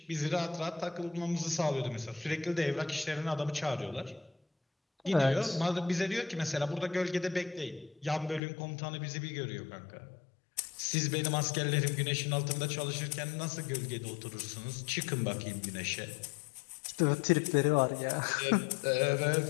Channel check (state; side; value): drops out; right; at 8.4 s